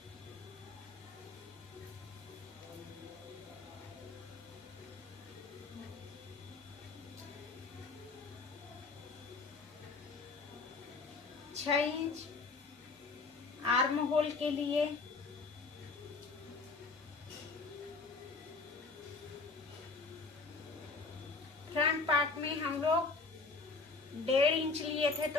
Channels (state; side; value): quieter; right; 4.0 dB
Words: छह इंच आर्म होल के लिए, फ्रंट पार्ट में हम लोग 1.5 इंच लिए थे,